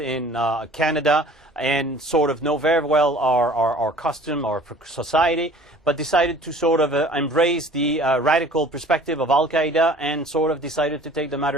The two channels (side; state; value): both; normal; correlation 0.49